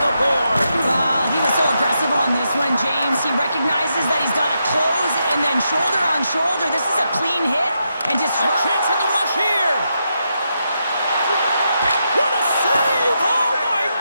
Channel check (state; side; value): inverted; both; correlation -0.83